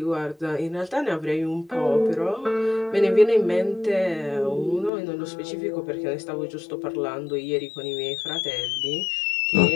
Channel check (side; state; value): right; drops out; at 4.9 s